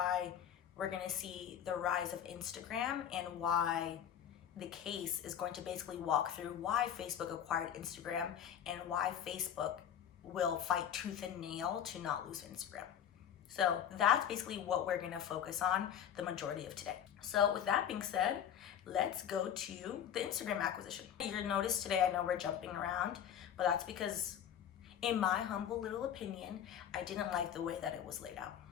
we're going to see the rise of Instagram and why the case is going to basically walk through why Facebook acquired Instagram and why Facebook will fight tooth and nail to not lose Instagram. So that's basically what we're going to focus on the majority of today. So with that being said, let's go to the Instagram acquisition. You'll notice today, I know we're jumping around, but that's because in my humble little opinion, I didn't like the way that it was laid out.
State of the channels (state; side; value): quieter; right; 9.4 dB